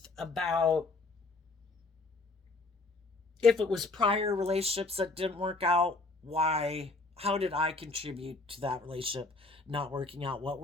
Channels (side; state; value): right; quieter; 3.4 dB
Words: about if it was prior relationships that didn't work out, why, how did I contribute to that relationship not working out? What